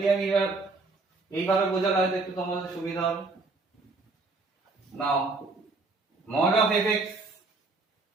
আমি এবার এইভাবে বোঝালে হয়তো একটু তোমাদের সুবিধা হবে। নাও mod of fx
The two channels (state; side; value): quieter; left; 3.6 dB